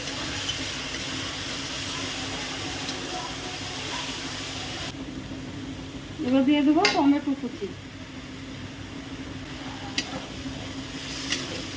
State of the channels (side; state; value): both; identical; correlation 1.00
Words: এবার দিয়ে দেবো টমেটো কুচি।